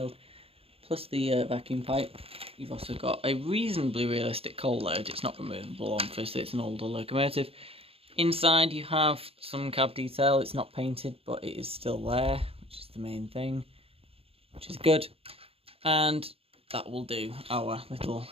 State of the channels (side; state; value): left; late; 0.28 ms